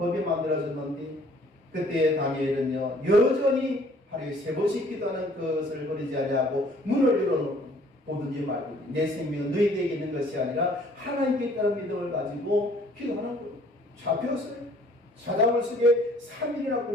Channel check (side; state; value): both; normal; correlation 0.57